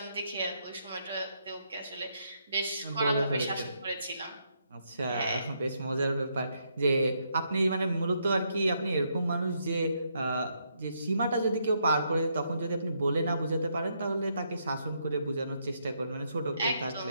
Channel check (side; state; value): both; inverted; correlation -0.76